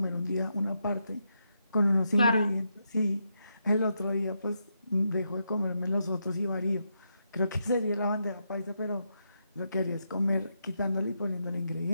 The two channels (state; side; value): inverted; both; correlation -0.83